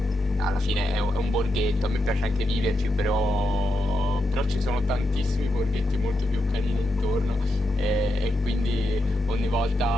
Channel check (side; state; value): both; normal; correlation 0.84